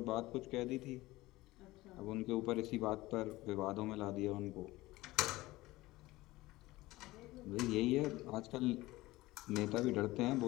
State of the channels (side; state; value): right; quieter; 18.9 dB